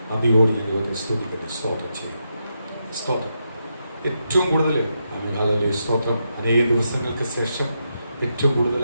നന്ദിയോട് ഞാൻ ദൈവത്തെ സ്തുതിക്കുന്നു, സ്തോത്രം ചെയ്യുന്നു. സ്തോത്രം. ഏറ്റവും കൂടുതൽ സ്തോത്രം, അനേക ദിവസങ്ങൾക്ക് ശേഷം ഏറ്റവും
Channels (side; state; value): both; inverted; correlation -0.84